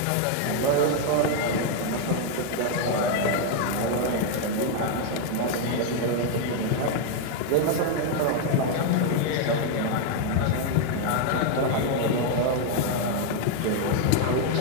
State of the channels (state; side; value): different; both; correlation 0.00